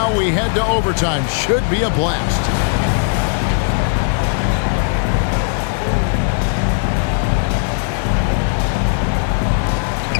we head to overtime. Should be a blast.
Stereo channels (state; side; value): silent; right; 66 dB below the other